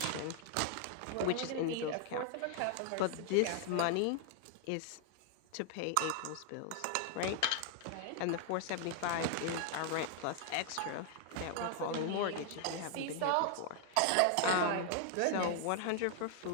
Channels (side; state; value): both; different; correlation 0.00